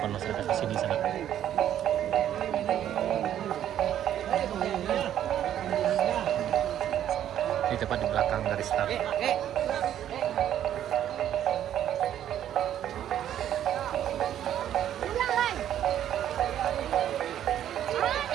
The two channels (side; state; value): left; quieter; 10.9 dB